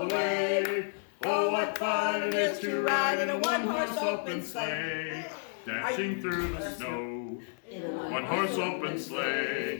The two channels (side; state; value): right; silent; 57 dB below the other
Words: the way. Oh, what fun it is to ride in a one-horse open sleigh. Dashing through the snow, one-horse open